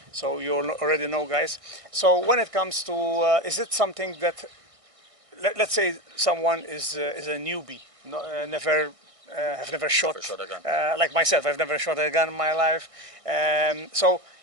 so you already know, guys. So when it comes to, is it something that, let's say someone is a newbie, have never shot, Never shot a gun. like myself, I've never shot a gun in my life. So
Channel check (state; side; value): late; left; 1.6 ms